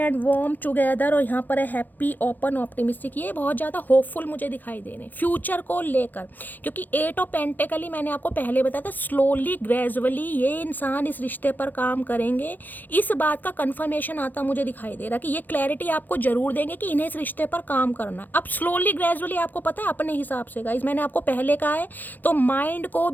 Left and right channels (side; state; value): right; late; 0.086 ms